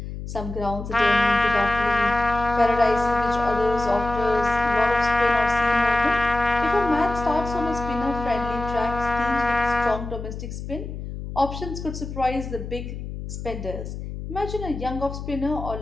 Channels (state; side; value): noise; left; hum, 8 dB below the sound